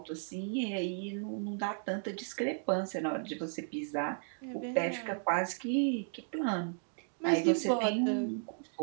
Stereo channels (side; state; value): left; silent; digital silence